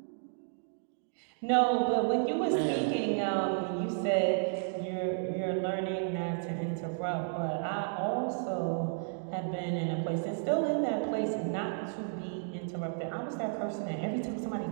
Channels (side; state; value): left; silent; digital silence